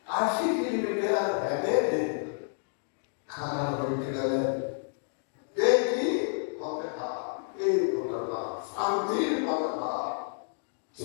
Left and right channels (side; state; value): right; silent; digital silence